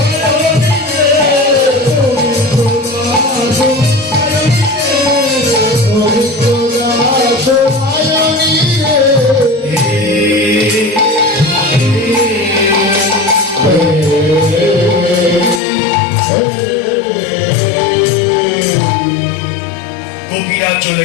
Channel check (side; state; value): right; drops out; at 15.6 s